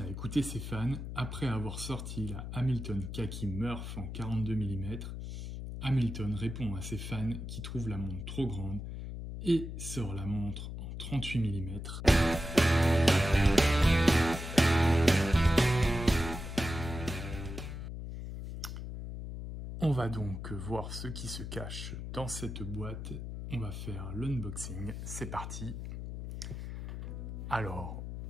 écouté ses fans après avoir sorti la Hamilton Khaki Murph en 42 mm. Hamilton répond à ses fans qui trouvent la montre trop grande et sort la montre en 38 mm. On va donc voir ce qui se cache dans cette boîte. On va faire l'unboxing. C'est parti. Alors,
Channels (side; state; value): left; noise; hum, 7 dB below the sound